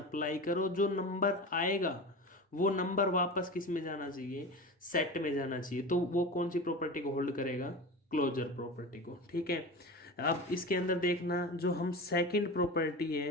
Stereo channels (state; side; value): normal; both; correlation 0.29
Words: करो, जो नंबर आएगा वो नंबर वापस किस में जाना चाहिए, सेट में जाना चाहिए। तो वो कौन सी प्रॉपर्टी को होल्ड करेगा, क्लोजर प्रॉपर्टी को। ठीक है। अब इसके अंदर देखना, जो हम सेकंड प्रॉपर्टी